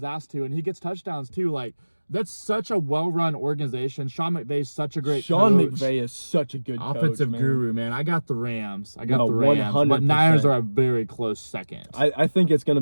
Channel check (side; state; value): both; inverted; correlation -1.00